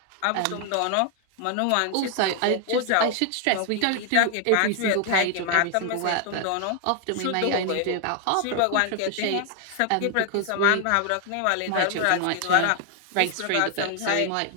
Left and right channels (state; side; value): different; both; correlation 0.00